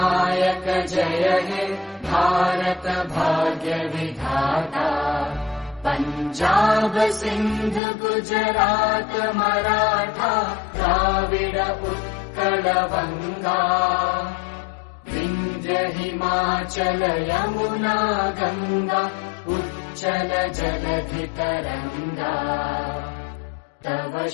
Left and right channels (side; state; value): right; drops out; at 7.8 s